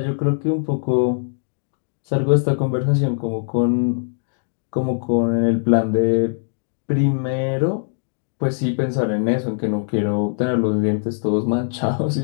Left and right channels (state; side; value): silent; right; digital silence